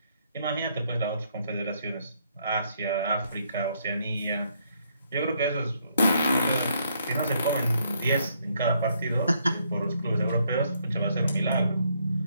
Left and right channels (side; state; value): both; inverted; correlation -0.72